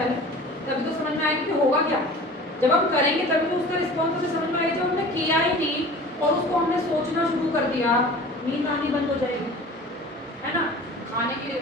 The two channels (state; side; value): normal; both; correlation 0.41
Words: तभी तो समझ में आएगी कि होगा क्या। जब हम करेंगे तभी तो उसका रिस्पॉन्स हमें समझ में आएगा। जब हमने किया ही नहीं और उसको हमने सोचना शुरू कर दिया, नींद आनी बंद हो जाएगी, है ना, खाने के लिए